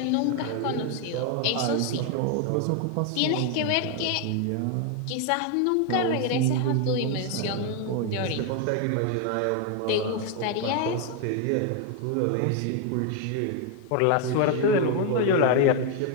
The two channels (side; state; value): both; different; correlation 0.01